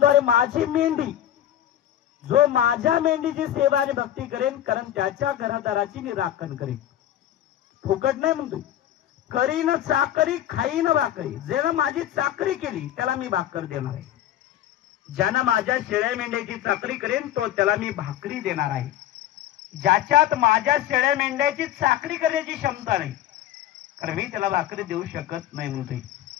अरे माझी मेंढी, जो माझ्या मेंढीची सेवा आणि भक्ती करेन, कारण त्याच्या घरादाराची मी राखण करेन, फुकट नाही म्हणतो, करीन चाकरी खाईन भाकरी, ज्यानं माझी चाकरी केली त्याला मी भाकर देणार आहे, ज्यानं माझ्या शेळ्या मेंढ्याची चाकरी करेन तो त्याला मी भाकरी देणार आहे। ज्याच्यात माझ्या शेळ्या मेंढ्याची चाकरी करण्याची क्षमता नाही, कारण मी त्याला भाकरी देऊ शकत नाही म्हणते,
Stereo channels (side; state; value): right; quieter; 12.0 dB